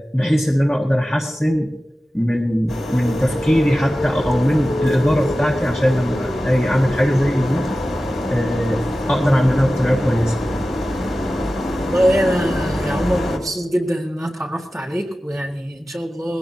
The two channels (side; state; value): both; normal; correlation 0.95